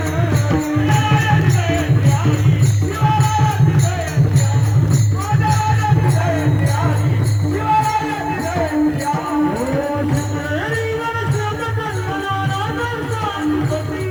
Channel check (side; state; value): right; noise; hiss, 30 dB below the sound